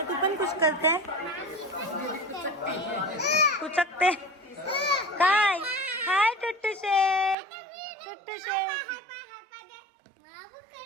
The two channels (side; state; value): left; drops out; at 7.4 s